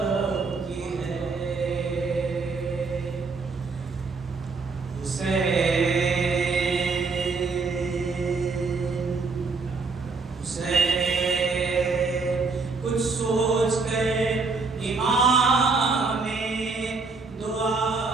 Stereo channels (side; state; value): left; quieter; 4.3 dB